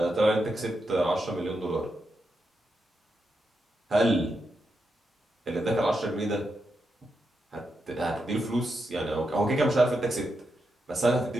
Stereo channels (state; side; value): normal; both; correlation 0.85